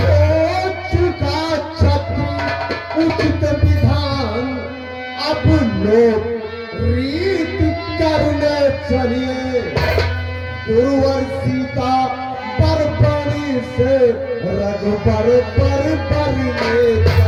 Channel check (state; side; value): identical; both; correlation 1.00